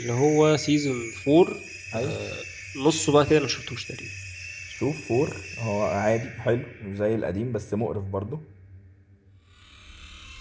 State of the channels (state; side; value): identical; both; correlation 1.00